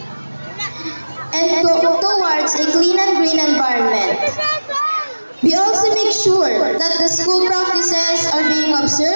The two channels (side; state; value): both; inverted; correlation -1.00